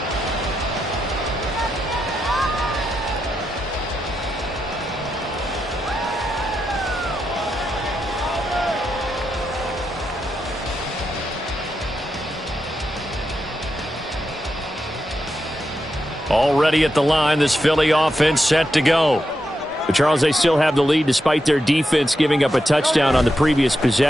Already at the line, this Philly offense set to go. But Charles, they still have the lead despite their defense giving up a touchdown on the previous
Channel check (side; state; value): both; normal; correlation 0.86